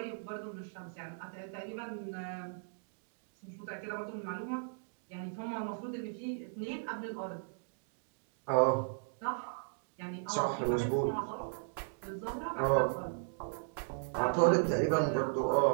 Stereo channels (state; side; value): silent; left; digital silence